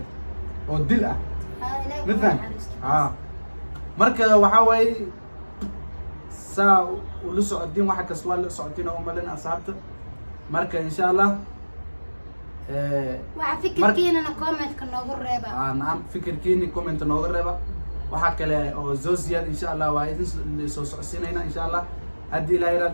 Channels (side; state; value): both; inverted; correlation -1.00